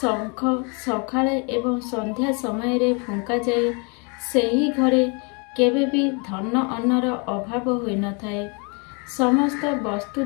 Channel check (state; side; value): quieter; right; 33.4 dB